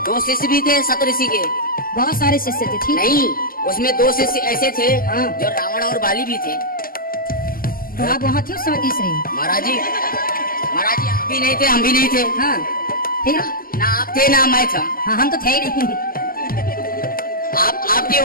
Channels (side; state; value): right; late; 0.42 ms